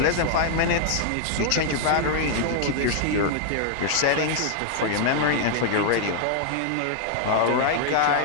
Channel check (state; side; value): different; both; correlation 0.00